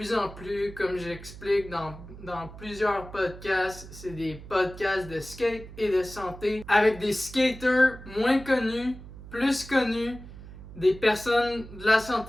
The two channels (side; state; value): right; noise; hum, 15 dB below the sound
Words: en plus, comme j'explique dans plusieurs podcasts, c'est des podcasts de skate et de santé avec des skaters moins connus, plus connus, des personnes de la